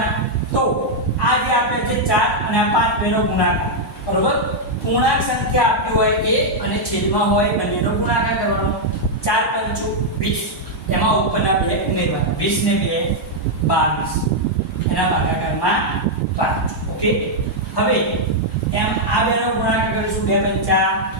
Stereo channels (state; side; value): normal; both; correlation -0.03